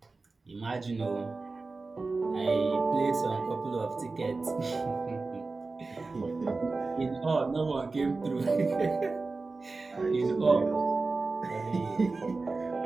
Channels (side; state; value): left; quieter; 3.7 dB